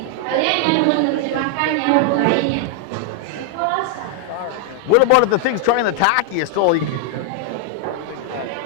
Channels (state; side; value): different; both; correlation 0.00